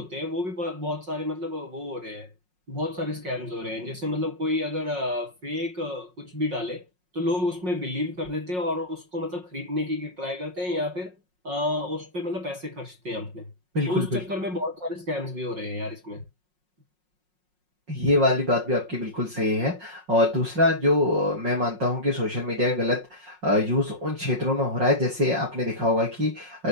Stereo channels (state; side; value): late; left; 5.5 ms